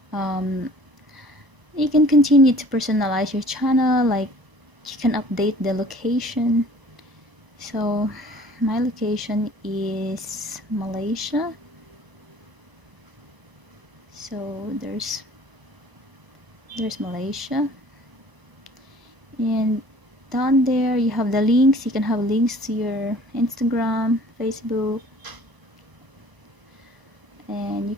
you can continue to personalize your channel, like you can update the location. So my location is Malaysia, so there's Malaysia, and down there you have the links. You can have links to your Instagram, Facebook, and you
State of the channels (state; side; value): late; left; 1.0 ms